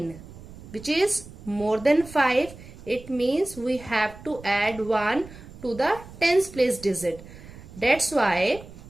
which is more than 5. It means we have to add 1 to the tens place digit. That's why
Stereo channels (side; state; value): right; noise; rumble, 17 dB below the sound